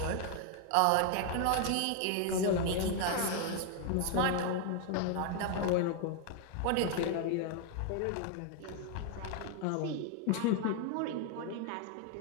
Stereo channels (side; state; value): both; different; correlation 0.00